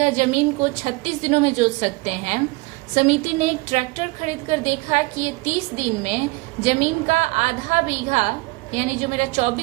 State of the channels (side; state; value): left; quieter; 23.9 dB